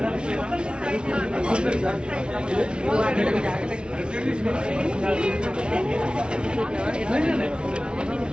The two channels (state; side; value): late; left; 0.056 ms